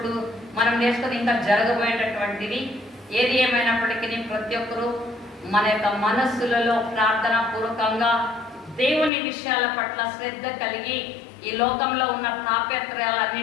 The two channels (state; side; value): drops out; right; at 9.1 s